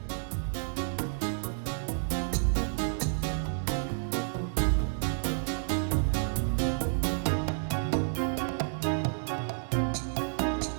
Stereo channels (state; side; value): silent; left; digital silence